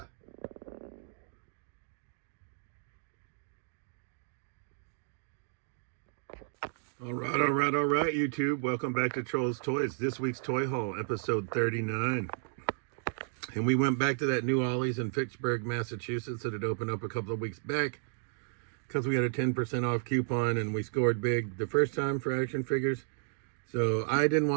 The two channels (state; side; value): silent; left; digital silence